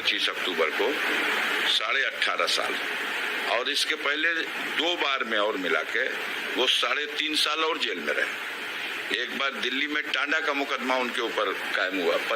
अक्टूबर को, 18.5 साल। और इसके पहले 2 बार में और मिला के वो 3.5 साल और जेल में रहे। एक बार दिल्ली में टांडा का मुकदमा उनके ऊपर कायम हुआ,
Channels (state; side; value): identical; both; correlation 1.00